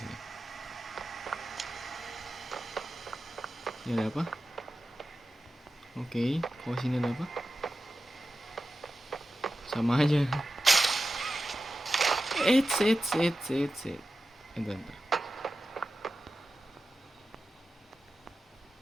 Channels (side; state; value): both; normal; correlation 0.92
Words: Ini ada apa? Oke, kalau sini ada apa? Sama aja. Bentar.